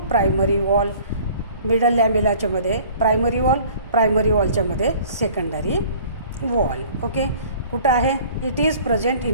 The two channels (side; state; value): both; inverted; correlation -0.50